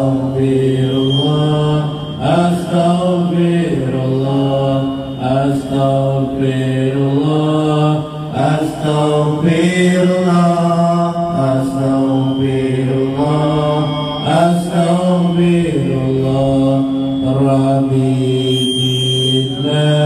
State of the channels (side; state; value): both; identical; correlation 1.00